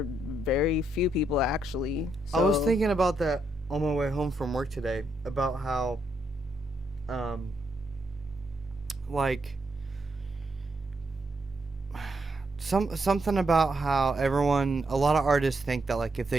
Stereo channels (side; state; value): both; normal; correlation 0.78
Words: very few people actually. So, I was thinking about that on my way home from work today, about how, like, something about how a lot of artists think that, like, if